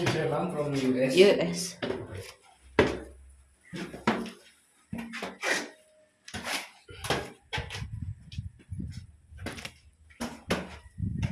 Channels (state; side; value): identical; both; correlation 1.00